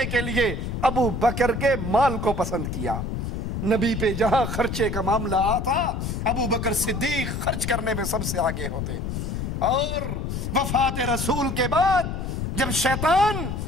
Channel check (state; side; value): noise; left; rumble, 3 dB below the sound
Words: کے لیے ابو بکر کے مال کو پسند کیا۔ نبی پہ جہاں خرچے کا معاملہ آتا ابو بکر صدیق خرچ کرنے میں سب سے آگے ہوتے۔ اور وفات رسول کے بعد جب شیطان